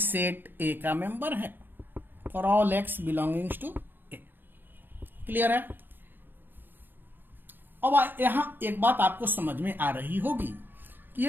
ए का मेंबर है, for all x belongings to a. Clear है। अब यहां एक बात आपको समझ में आ रही होगी कि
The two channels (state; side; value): late; left; 0.095 ms